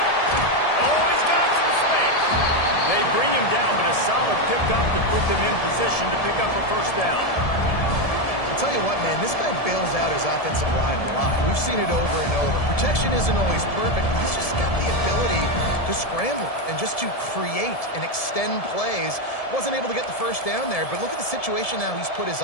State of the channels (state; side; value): late; right; 1.7 ms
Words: Oh, he's got some space. They bring him down, but a solid pickup to put them in position to pick up a 1st down. I'll tell you what, man, this guy bails out his offensive line a lot. We've seen it over and over. Protection isn't always perfect, but he's just got the ability to scramble and just to create and extend plays. Wasn't able to get the 1st down there, but look at the situation now he's put his